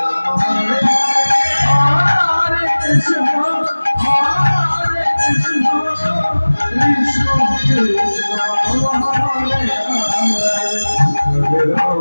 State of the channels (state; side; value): inverted; both; correlation -1.00